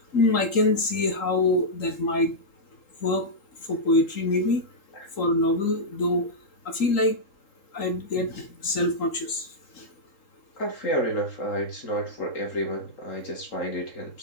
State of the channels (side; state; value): right; late; 3.8 ms